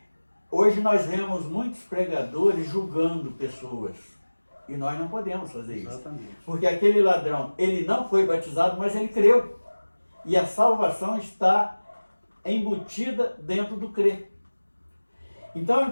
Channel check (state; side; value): inverted; both; correlation -1.00